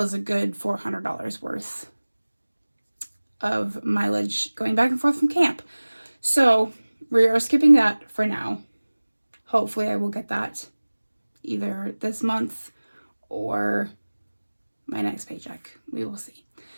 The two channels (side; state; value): both; inverted; correlation -1.00